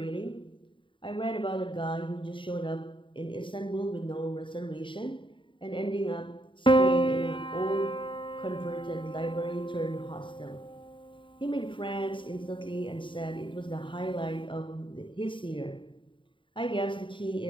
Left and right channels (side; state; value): right; late; 0.24 ms